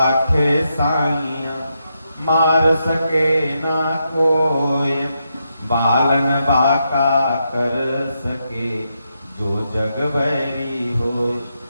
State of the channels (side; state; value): both; inverted; correlation -0.83